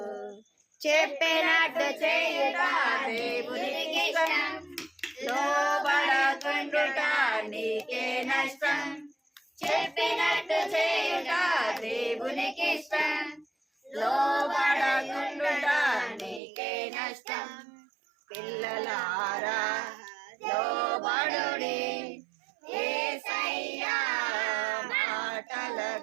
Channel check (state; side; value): drops out; left; at 16.4 s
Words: చెప్పినట్టు చేయుట దేవునికి ఇష్టం, లోబడకుండుట నీకే నష్టం. చెప్పినట్టు చేయుట దేవునికి ఇష్టం, లోబడకుండుట నీకే నష్టం. పిల్లలారా లోబడుడి యేసయ్యా